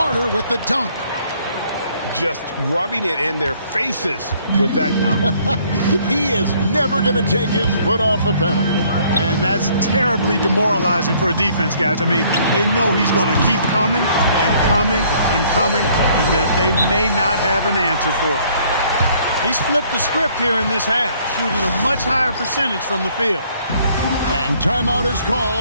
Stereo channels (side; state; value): both; inverted; correlation -0.62